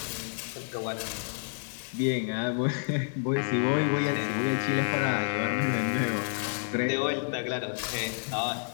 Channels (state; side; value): silent; right; digital silence